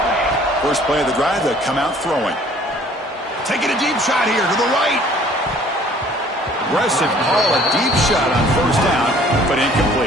First play of the drive, they come out throwing. Taking a deep shot here to the right. Aggressive call, a deep shot on first down, but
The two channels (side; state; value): both; normal; correlation 0.55